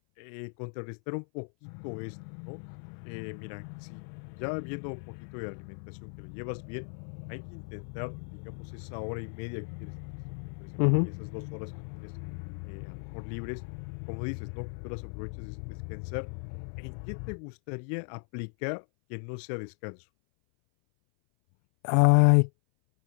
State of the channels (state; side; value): silent; right; 55 dB below the other